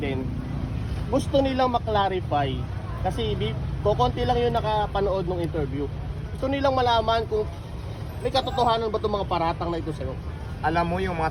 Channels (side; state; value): both; identical; correlation 1.00